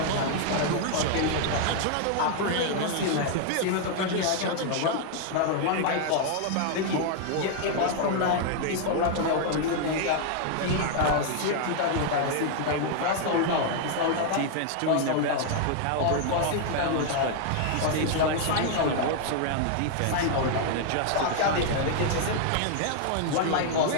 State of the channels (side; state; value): both; different; correlation 0.00